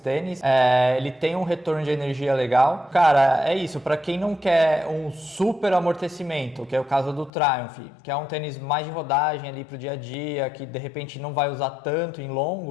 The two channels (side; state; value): right; drops out; at 7.3 s